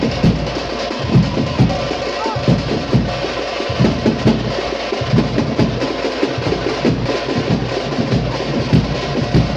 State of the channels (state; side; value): identical; both; correlation 1.00